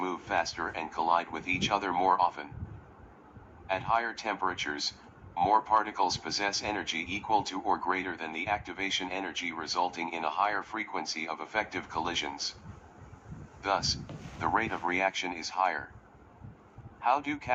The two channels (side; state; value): both; identical; correlation 1.00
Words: faster and collide with each other more often. At higher temperatures, more particles possess energy equal to or greater than the activation energy, resulting in a higher frequency of effective collisions. Thus, the rate of reaction is higher. How do